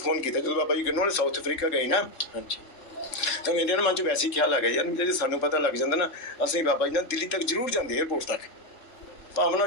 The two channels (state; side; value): late; right; 3.7 ms